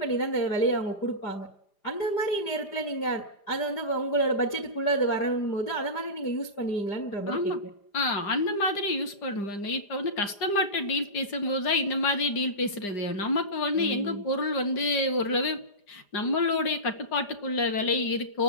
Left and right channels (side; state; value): right; late; 5.0 ms